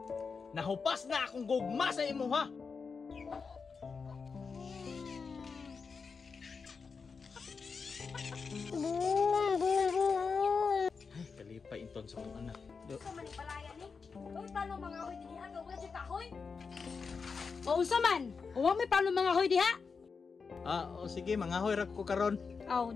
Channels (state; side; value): quieter; right; 5.2 dB